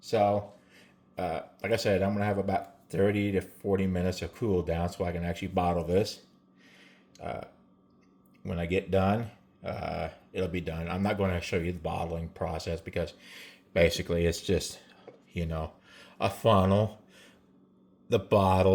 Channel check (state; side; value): identical; both; correlation 1.00